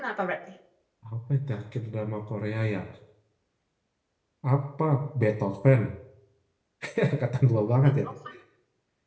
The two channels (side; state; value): both; identical; correlation 1.00